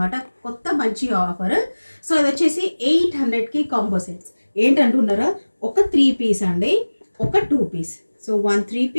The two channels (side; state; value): both; inverted; correlation -1.00